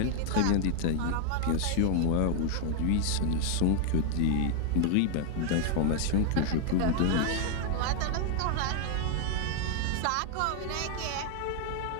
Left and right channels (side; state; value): both; different; correlation 0.00